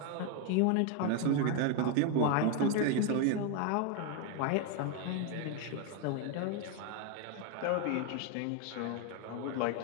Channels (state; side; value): different; both; correlation 0.01